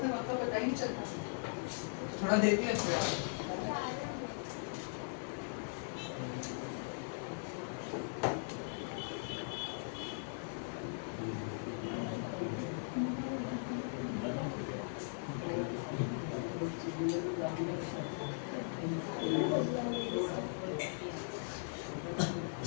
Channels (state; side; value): silent; right; 52 dB below the other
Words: वक्त तो पता ही नहीं चलता, थोड़ा देख लेते हैं।